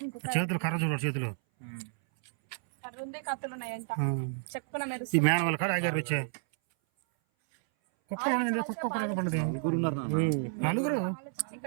చేతులు కర్ర చూడ చేతులు ఈ మేన వాళ్ళ కాడ ఆగారు వచ్చే కుక్కలు కుక్క పడదు నలుగురు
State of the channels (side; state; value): left; silent; 57 dB below the other